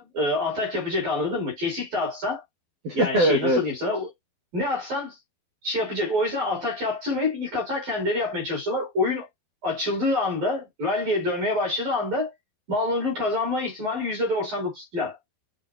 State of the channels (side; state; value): left; late; 11 ms